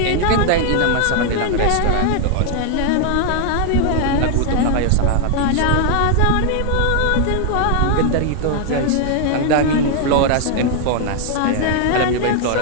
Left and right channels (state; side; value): different; both; correlation 0.00